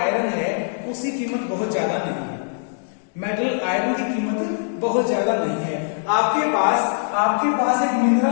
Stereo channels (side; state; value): right; silent; 64 dB below the other